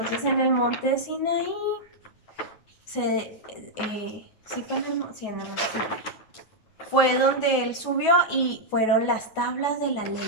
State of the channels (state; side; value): late; right; 9.3 ms